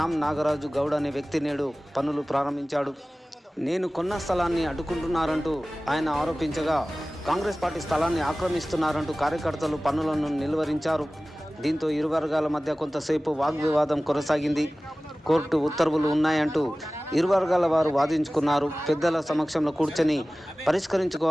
నాగరాజు గౌడ్ అనే వ్యక్తి నేడు పనులు ప్రారంభించాడు. నేను కొన్న స్థలాన్ని అడ్డుకుంటున్నారంటూ ఆయన ఆరోపించగా, కాంగ్రెస్ పార్టీ స్థలాన్ని ఆక్రమిస్తున్నారంటూ కార్యకర్తలు పనులను నిలువరించారు. దీంతో ఇరు వర్గాల మధ్య కొంతసేపు వాగ్వివాదం కొనసాగింది. కోర్టు ఉత్తర్వులు ఉన్నాయంటూ ఇరు వర్గాల వారు వాదించుకున్నారు. పెద్దల సమక్షంలో కూర్చొని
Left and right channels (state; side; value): normal; both; correlation 0.97